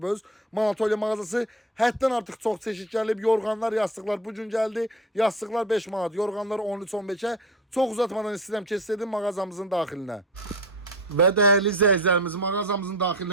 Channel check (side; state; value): both; normal; correlation 0.33